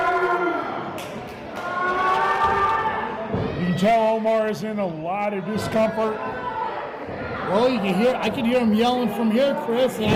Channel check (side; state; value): both; identical; correlation 1.00